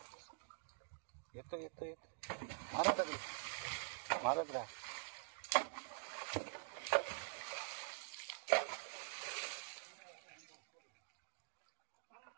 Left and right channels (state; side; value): silent; left; digital silence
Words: येतो मारा दगडी मारत राहा.